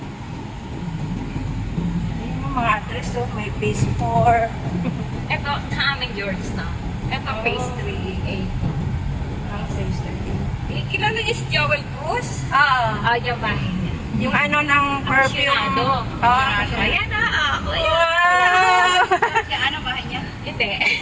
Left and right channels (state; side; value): identical; both; correlation 1.00